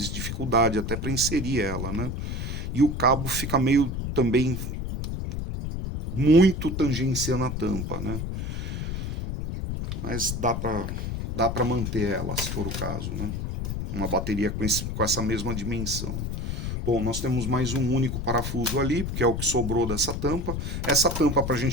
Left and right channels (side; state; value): left; noise; rumble, 3 dB below the sound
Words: dificuldade até para inserir ela, né? E o cabo fica meio também muito tangenciando a tampa, né? Mas dá para manter ela, se for o caso, né? Uma bateria com essa mesma dimensão. Bom, nós temos mais um único parafuso ali, porque é o que sobrou dessa tampa. Essa tampa, para a